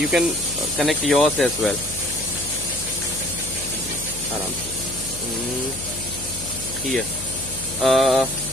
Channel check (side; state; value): left; noise; hum, 12 dB below the sound